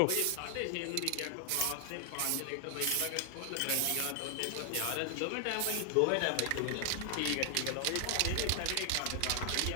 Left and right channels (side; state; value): both; different; correlation 0.00